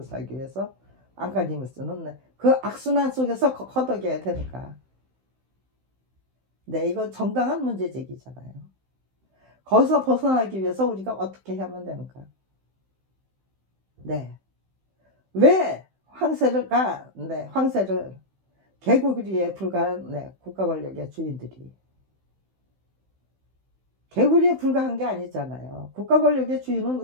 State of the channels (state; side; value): late; left; 16 ms